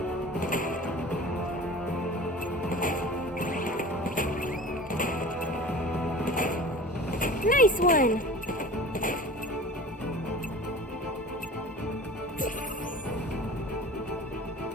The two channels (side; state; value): both; normal; correlation 0.39